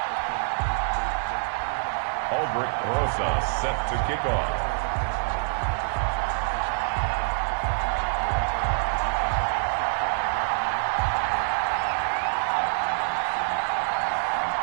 Albert Rosa set to kick off.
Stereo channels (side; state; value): left; silent; digital silence